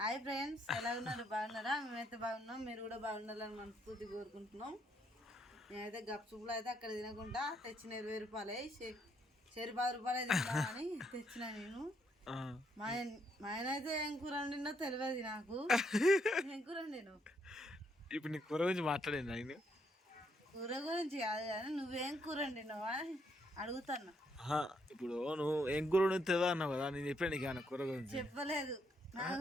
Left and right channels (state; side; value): normal; both; correlation 0.74